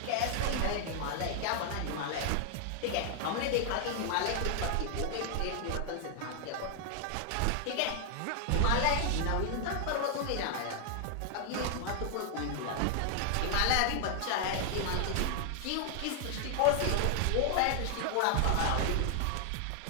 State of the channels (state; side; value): different; both; correlation 0.00